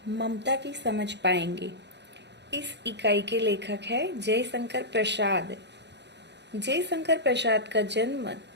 ममता की समझ पाएंगे। इस इकाई के लेखक है जयशंकर प्रसाद। जयशंकर प्रसाद का जन्म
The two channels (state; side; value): late; left; 0.50 ms